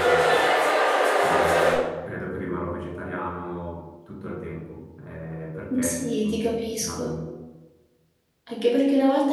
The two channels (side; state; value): both; identical; correlation 1.00